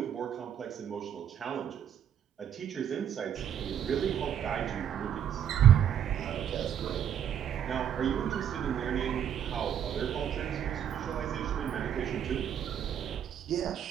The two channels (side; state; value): left; quieter; 9.3 dB